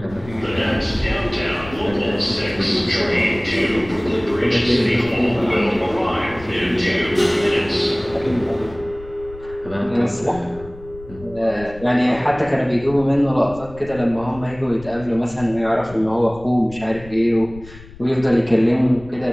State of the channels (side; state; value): left; noise; rumble, 18 dB below the sound